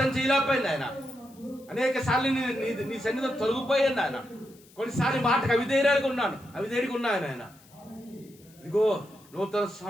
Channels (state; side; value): noise; left; hiss, 27 dB below the sound